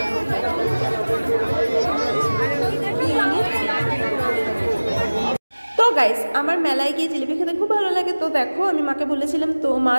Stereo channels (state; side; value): inverted; both; correlation -1.00